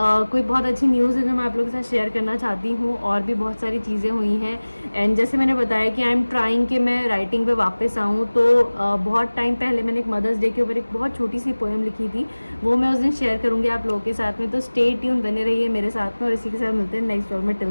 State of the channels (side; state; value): both; inverted; correlation -1.00